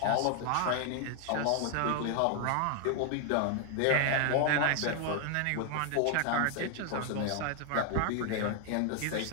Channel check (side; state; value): both; different; correlation 0.00